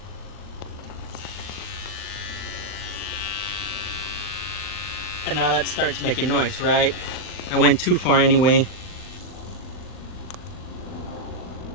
And now that starts making noise, right? I went too far anyway.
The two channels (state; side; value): late; right; 39 ms